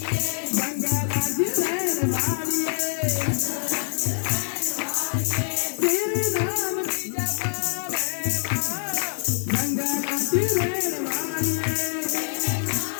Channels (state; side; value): silent; right; 61 dB below the other